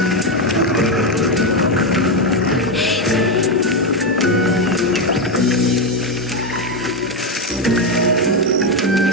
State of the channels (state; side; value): normal; both; correlation 0.08